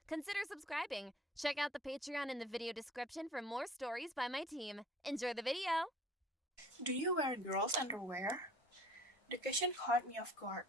consider subscribing. Check out the Patreon in the video description for more stories by my team. Enjoy the video! Do you wear girls' underwear? The question caught me off guard.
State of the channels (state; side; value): normal; both; correlation 0.49